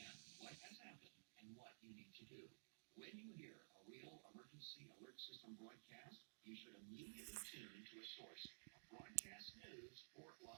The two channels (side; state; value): left; silent; digital silence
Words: what has happened and what you need to do. When you hear a real emergency alert system broadcast, you should immediately tune to a source of broadcast news for